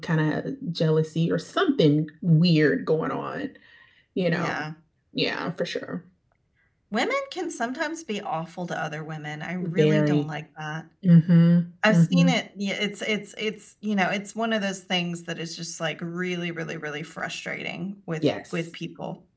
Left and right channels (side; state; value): both; identical; correlation 1.00